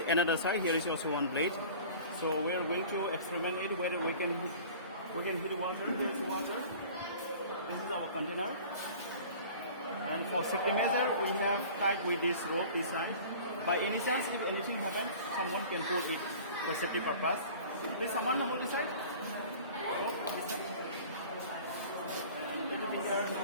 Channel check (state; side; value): inverted; both; correlation -0.43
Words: another side. Here is also one blade. So we are going to experiment it whether we can heat water. Here is water. This is our container. And for safety measure, we have tied with this rope inside. By any chance, if anything happens, someone can hold it for safety purpose. Please, someone hold this side. Hold this side. And everything here,